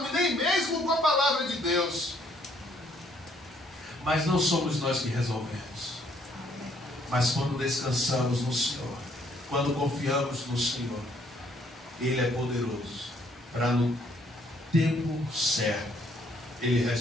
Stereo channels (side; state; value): both; normal; correlation 0.67